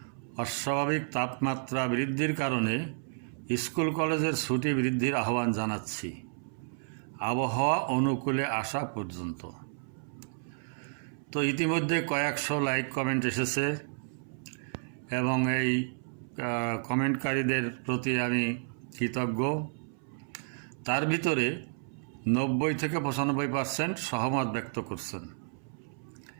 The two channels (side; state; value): left; silent; 57 dB below the other